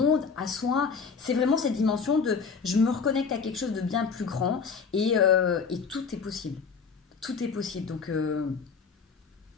à soi. C'est vraiment cette dimension de je me reconnecte à quelque chose de bien plus grand et tout est possible. Tout est possible. Donc,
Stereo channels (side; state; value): right; quieter; 5.5 dB